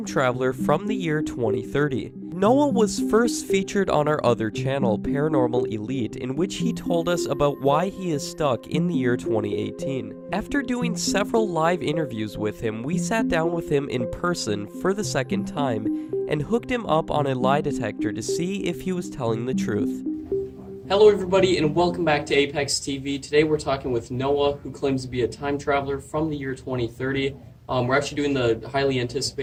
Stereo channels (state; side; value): identical; both; correlation 1.00